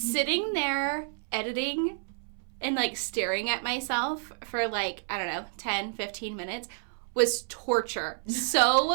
there editing and staring at myself for 10, 15 minutes was torture.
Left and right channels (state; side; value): silent; left; 58 dB below the other